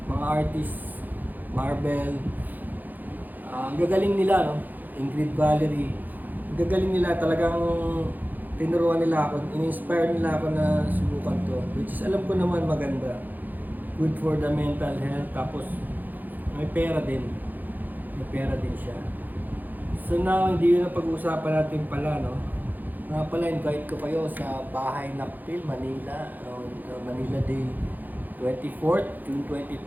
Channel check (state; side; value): late; left; 0.084 ms